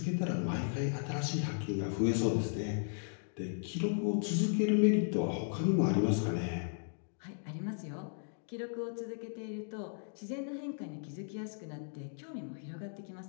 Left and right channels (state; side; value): silent; right; digital silence